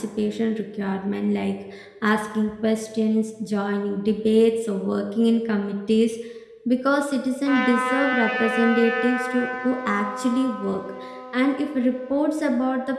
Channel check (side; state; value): both; identical; correlation 1.00